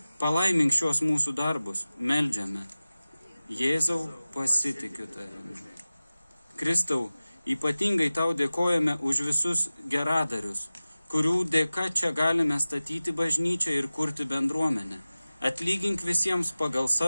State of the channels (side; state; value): both; inverted; correlation -0.97